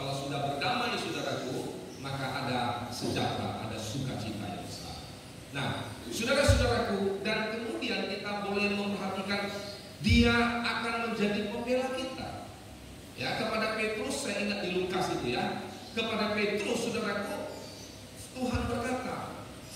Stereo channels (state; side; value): identical; both; correlation 1.00